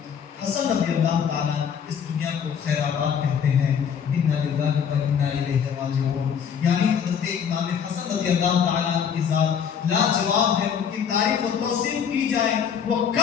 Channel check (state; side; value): quieter; right; 7.6 dB